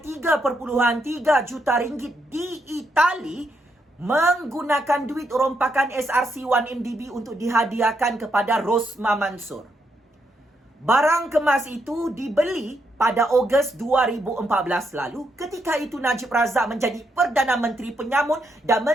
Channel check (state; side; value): normal; both; correlation 0.79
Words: 3.3 juta ringgit di Itali menggunakan duit rompakan SRC 1MDB untuk dihadiahkan kepada Rosmah Mansur. Barang kemas itu dibeli pada Ogos 2014 lalu. Ketika itu Najib Razak menjadi Perdana Menteri Penyamun dan